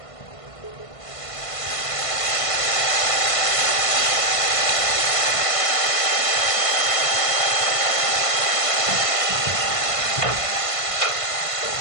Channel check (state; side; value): late; right; 1.5 ms